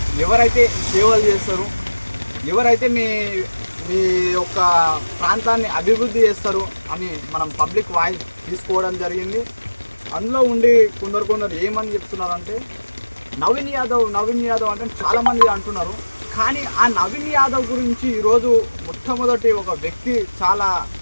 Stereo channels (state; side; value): inverted; both; correlation -1.00